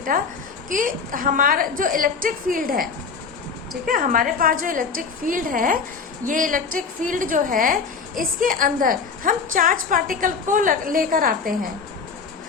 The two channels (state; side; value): quieter; right; 5.4 dB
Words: कि हमारा जो इलेक्ट्रिक फील्ड है, ठीक है, हमारे पास जो इलेक्ट्रिक फील्ड है, ये इलेक्ट्रिक फील्ड जो है, इसके अंदर हम चार्ज पार्टिकल को लेकर आते हैं।